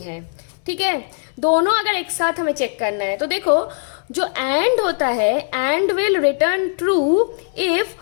है। ठीक है, दोनों अगर एक साथ हमें चेक करना है, तो देखो जो एंड होता है, and will return true if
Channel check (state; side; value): silent; right; 66 dB below the other